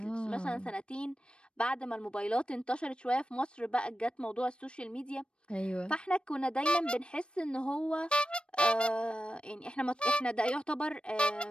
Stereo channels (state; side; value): late; right; 0.056 ms